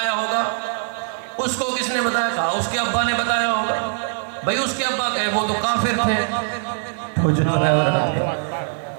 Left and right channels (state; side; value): silent; left; digital silence